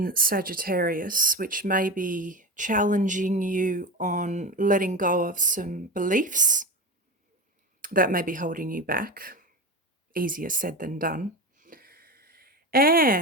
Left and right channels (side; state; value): both; normal; correlation 0.24